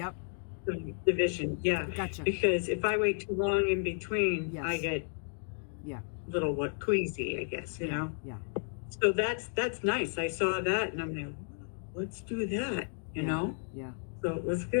Division. Yeah. Gotcha. Because if I wait too long in between, I get little queasy, I guess, you know. Yeah. So that's nice. I saw that and I'm like, let's do that, you know? Yeah. So it was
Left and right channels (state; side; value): silent; right; 56 dB below the other